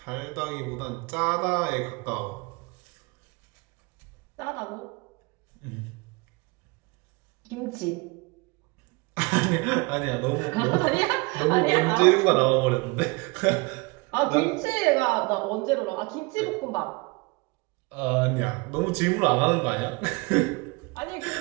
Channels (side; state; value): left; quieter; 27.1 dB